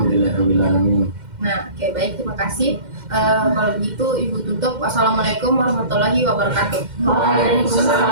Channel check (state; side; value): late; left; 2.1 ms